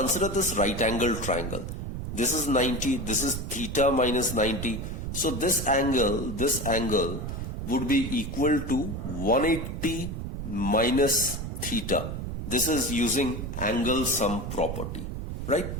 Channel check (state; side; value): noise; right; rumble, 5 dB below the sound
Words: this right angle triangle. This is 90, this is theta minus 90. So this angle would be equal to 180 minus theta. This is using angle sum property, right?